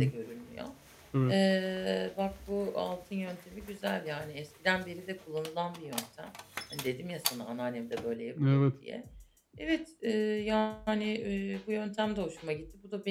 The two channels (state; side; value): identical; both; correlation 1.00